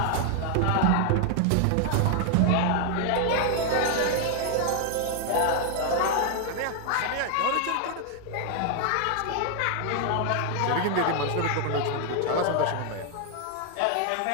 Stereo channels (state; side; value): different; both; correlation 0.00